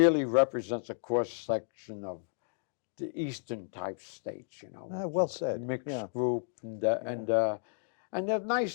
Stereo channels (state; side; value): silent; right; digital silence